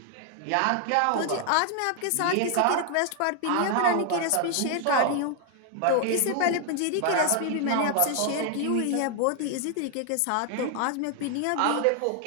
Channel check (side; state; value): both; different; correlation 0.00